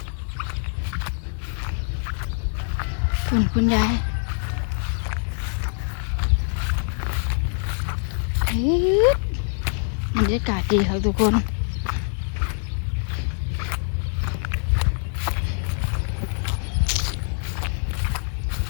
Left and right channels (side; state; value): right; silent; 62 dB below the other